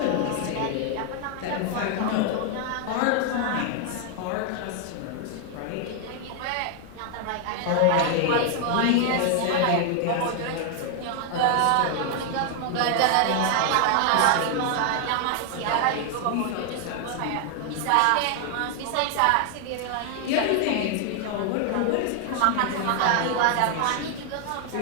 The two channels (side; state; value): both; different; correlation 0.00